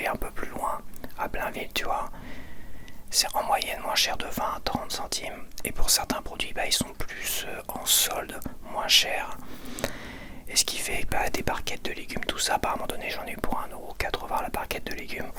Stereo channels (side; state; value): both; identical; correlation 1.00